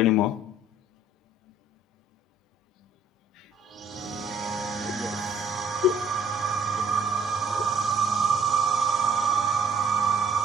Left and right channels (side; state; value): both; normal; correlation 0.60